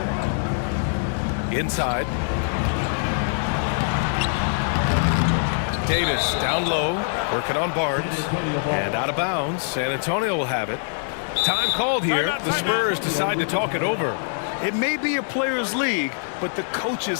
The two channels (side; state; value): right; silent; digital silence